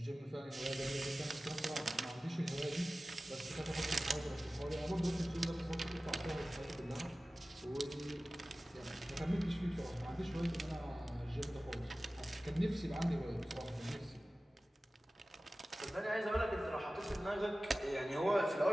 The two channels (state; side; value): normal; both; correlation 0.96